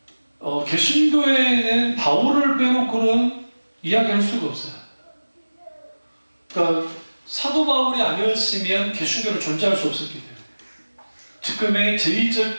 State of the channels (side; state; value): both; inverted; correlation -1.00